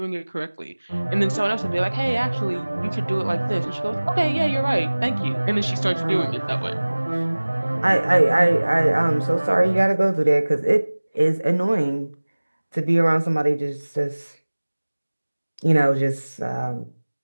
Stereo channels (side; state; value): both; inverted; correlation -1.00